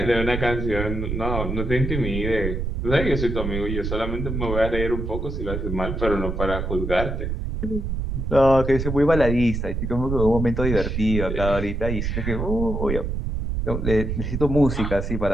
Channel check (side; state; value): right; noise; rumble, 3 dB below the sound